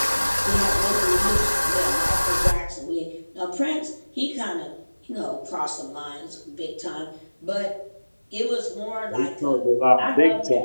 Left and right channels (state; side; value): inverted; both; correlation -1.00